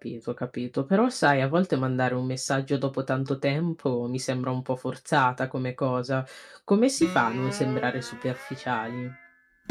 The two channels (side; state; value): both; identical; correlation 1.00